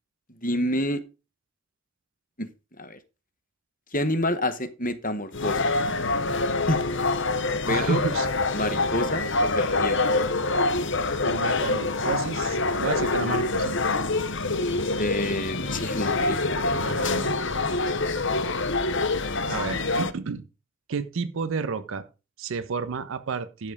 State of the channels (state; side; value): normal; both; correlation -0.13